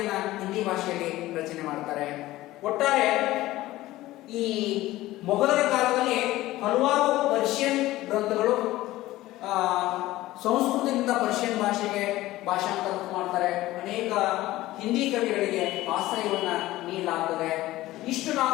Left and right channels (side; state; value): right; quieter; 16.7 dB